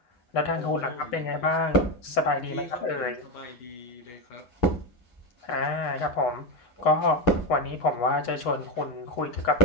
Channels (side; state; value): right; late; 8.8 ms